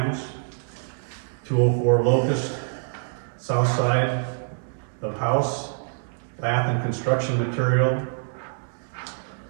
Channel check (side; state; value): left; silent; 61 dB below the other